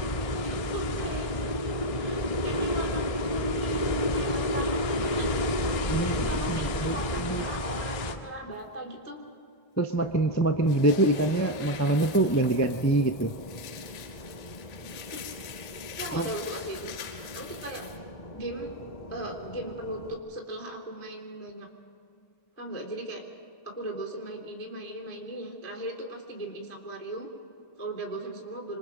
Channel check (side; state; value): right; late; 1.8 ms